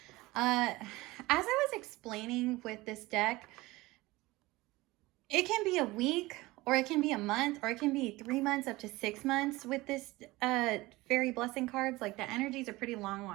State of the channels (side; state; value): left; quieter; 20.2 dB